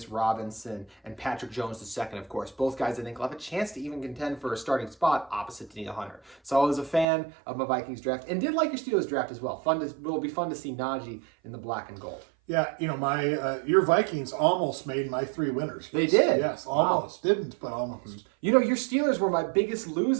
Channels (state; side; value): drops out; left; at 7.1 s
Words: Robinson and Patrick Jones II, of course. Both guys I think will have a chance to even contend for a starting spot opposite Danielle Hunter. So I was a fan of my Vikings draft and did like your Steelers draft as well. It'll be fun to see Najee in the black and gold. Yeah, your Vikings almost made my 3 winners. They did? Yes, almost. Wow. Didn't, but almost. Your Steelers were my biggest